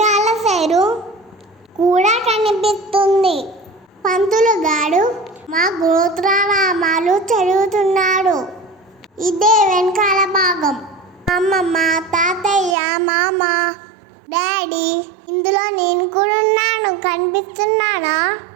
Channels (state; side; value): drops out; left; at 12.8 s